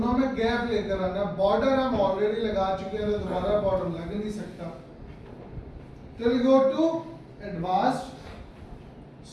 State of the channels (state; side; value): identical; both; correlation 1.00